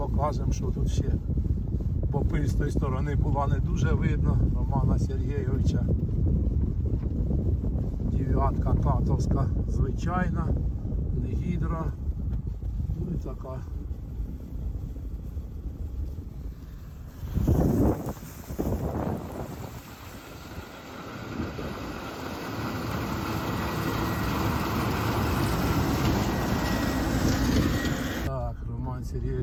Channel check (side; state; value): both; identical; correlation 1.00